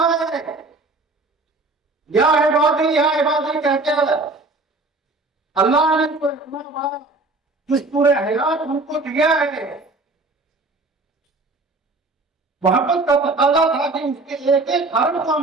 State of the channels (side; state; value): left; quieter; 3.1 dB